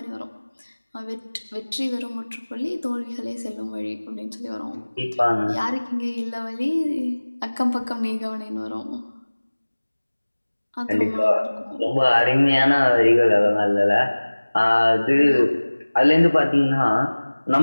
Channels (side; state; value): both; inverted; correlation -1.00